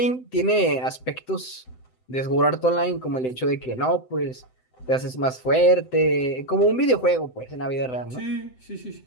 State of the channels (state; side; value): late; right; 7.8 ms